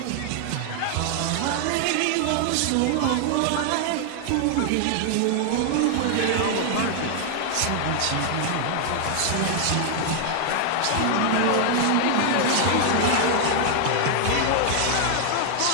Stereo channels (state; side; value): different; both; correlation 0.00